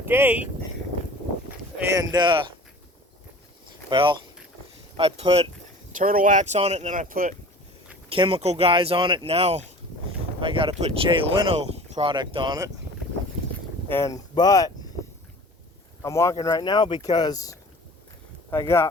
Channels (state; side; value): normal; both; correlation 0.42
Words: 8, and well, I put turtle wax on it, and then I put chemical guys on it. Now I got to put Jay Leno product on it, but I'm walking right now because I